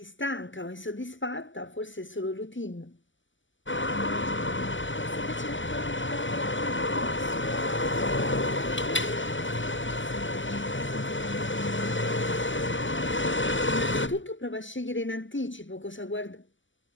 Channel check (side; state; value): right; late; 0.55 ms